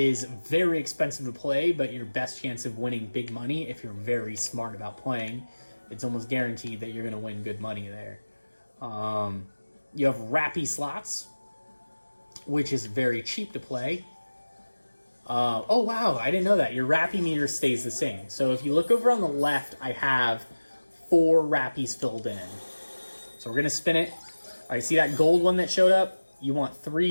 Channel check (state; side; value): inverted; both; correlation -1.00